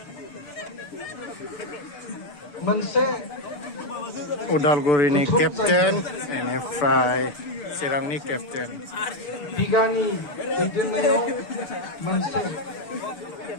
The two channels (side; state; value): right; late; 6.9 ms